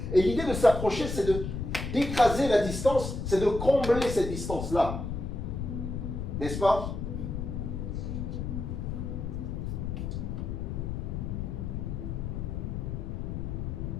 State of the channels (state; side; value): noise; left; rumble, 4 dB below the sound